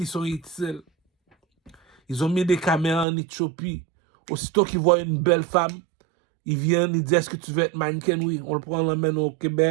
sont utiles. Ils ont mis des caméras en Éthiopie. Aussitôt qu'ils voient une belle femme, ils viennent, ils disent, est-ce que tu veux être mannequin? Oui, on le prend, on l'emmène au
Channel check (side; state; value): left; drops out; at 3.1 s